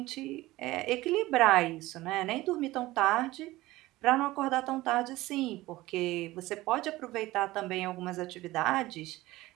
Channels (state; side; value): quieter; left; 18.2 dB